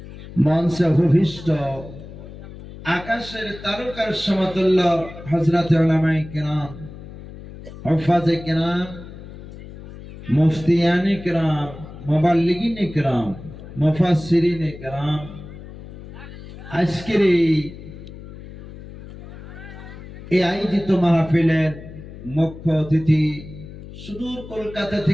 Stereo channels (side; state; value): left; noise; hum, 15 dB below the sound